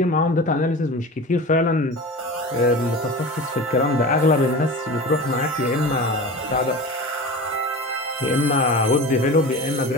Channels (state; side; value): normal; both; correlation 0.33